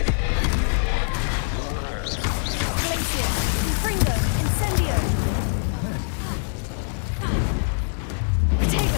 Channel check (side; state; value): right; silent; digital silence